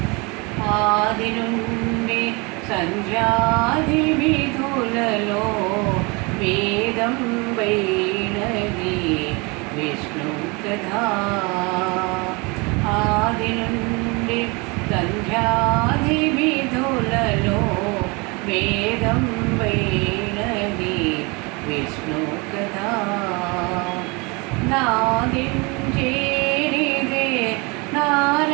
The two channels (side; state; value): left; quieter; 28.0 dB